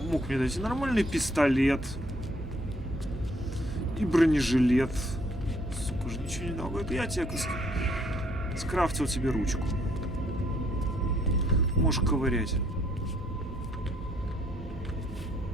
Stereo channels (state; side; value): normal; both; correlation 0.67